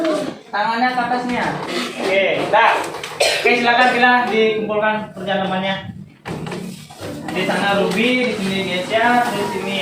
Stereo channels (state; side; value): identical; both; correlation 1.00